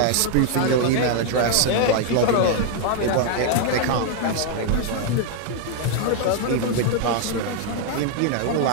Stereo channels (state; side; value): different; both; correlation 0.00